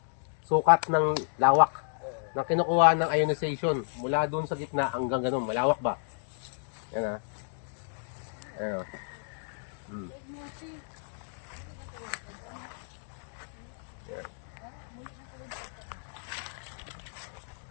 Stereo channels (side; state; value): right; silent; digital silence